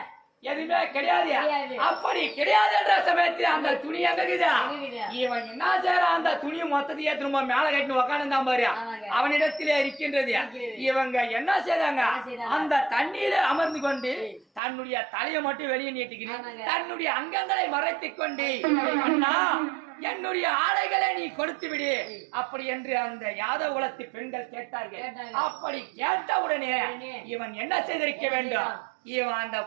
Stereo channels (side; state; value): left; drops out; at 14.6 s